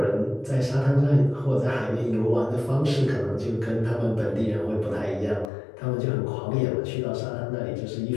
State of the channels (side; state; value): right; drops out; at 5.5 s